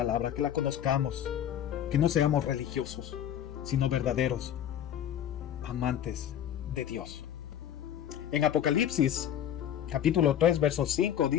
que la conozcamos, que no seamos religiosos, sino verdaderos amantes de Dios. En Apocalipsis capítulo 3, verso 5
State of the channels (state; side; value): quieter; right; 10.2 dB